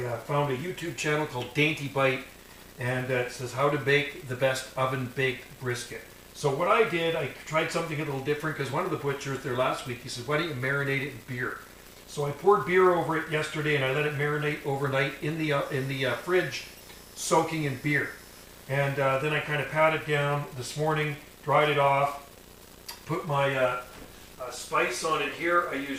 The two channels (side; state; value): both; identical; correlation 1.00